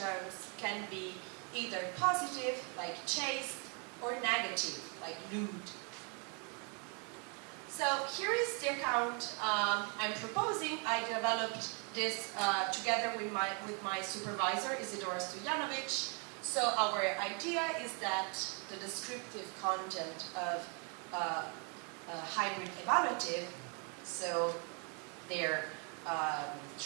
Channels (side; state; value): left; quieter; 36.6 dB